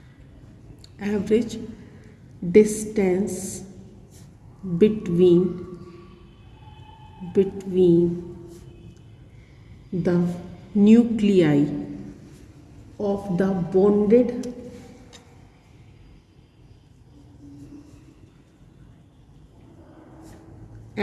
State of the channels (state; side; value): identical; both; correlation 1.00